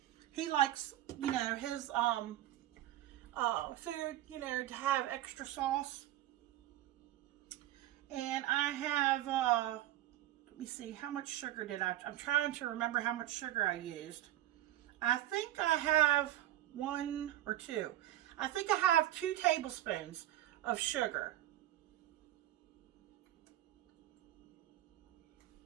he likes, his food, to have extra sauce. And I have, let me see, how much sugar did I'm trying to remember how much sugar I used. I think I have 1 or 2. I think I have 2 tablespoons of sugar.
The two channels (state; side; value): quieter; left; 13.9 dB